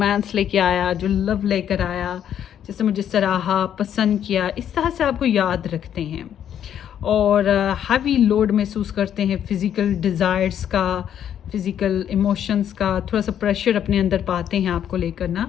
लेके आया, जो लव लेकर आया, जैसे मुझे सराहा, पसंद किया, इस तरह से आपको याद रखते हैं और हैवी लोड महसूस करते हैं फिज़िकल डिज़ायर्स का, फिज़िकल इमोशंस का, थोड़ा सा प्रेशर अपने अंदर पाते हैं आपको लेकर ना।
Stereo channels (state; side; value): quieter; right; 9.7 dB